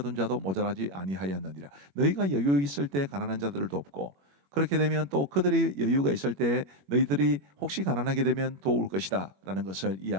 자도 모자라지 아니하였느니라. 너희가 여유 있을 때 가난한 자들을 돕고, 그렇게 되면 또 그들이 여유가 있을 때 너희들이 혹시 가난하게 되면 도울 것이다 라는 것을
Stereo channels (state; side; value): late; left; 21 ms